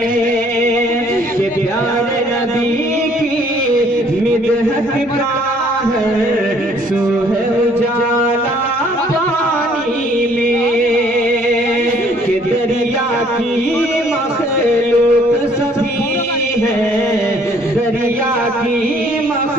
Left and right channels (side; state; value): both; normal; correlation 0.60